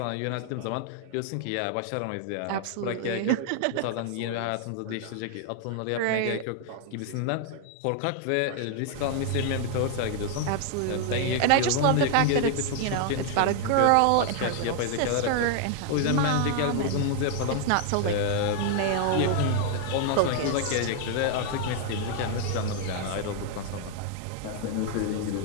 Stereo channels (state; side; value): different; both; correlation 0.00